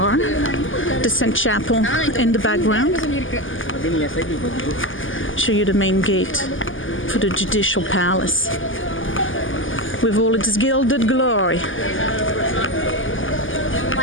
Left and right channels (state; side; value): late; right; 0.58 ms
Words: the Sainte Chapelle in the background. Show you the main gate for the Judicial Palace with all its gilded glory.